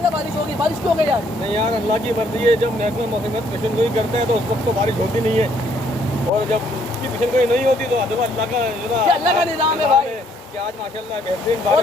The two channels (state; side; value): normal; both; correlation 0.67